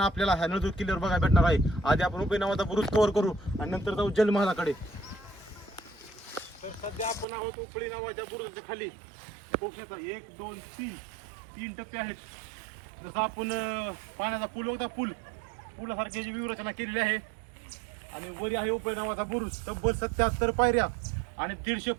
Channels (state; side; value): drops out; left; at 7.2 s